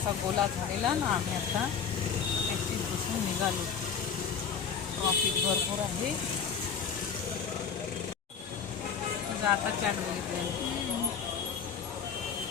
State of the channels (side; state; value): right; quieter; 6.9 dB